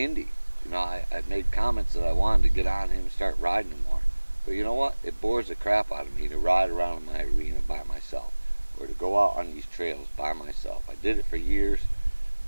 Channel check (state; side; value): inverted; both; correlation -1.00